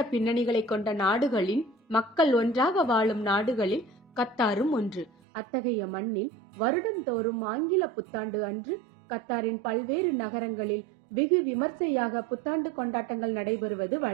பின்னணிகளை கொண்ட நாடுகளின் மக்கள் ஒன்றாக வாழும் நாடுகளில் கத்தாரும் ஒன்று. அத்தகைய மண்ணில் வருடந்தோறும் ஆங்கில புத்தாண்டு அன்று கத்தாரின் பல்வேறு நகரங்களில் வெகு விமர்சையாக புத்தாண்டு கொண்டாட்டங்கள் நடைபெறுவது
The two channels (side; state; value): left; drops out; at 5.1 s